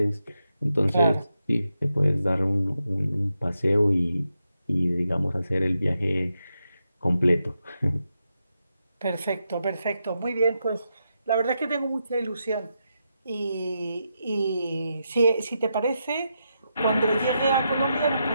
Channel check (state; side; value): inverted; both; correlation -0.85